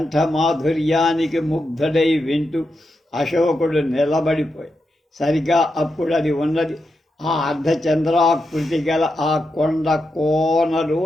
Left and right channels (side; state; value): both; normal; correlation 0.86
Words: ముగ్ధుడై వింటూ అశోకుడు నిలబడిపోయి సరిగా అప్పుడు అది ఉన్నది ఆ అర్ధచంద్రాకృతి గల ఆ కొండ